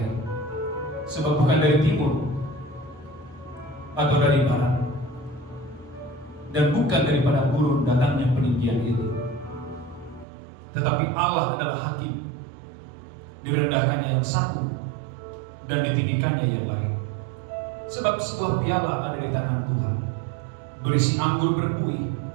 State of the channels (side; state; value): left; drops out; at 10.2 s